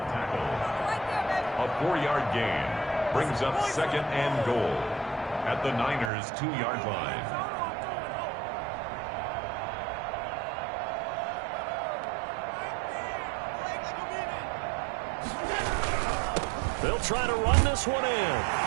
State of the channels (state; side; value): drops out; left; at 6.1 s